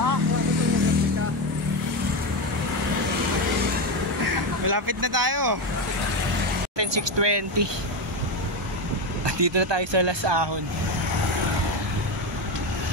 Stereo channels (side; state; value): both; normal; correlation 0.13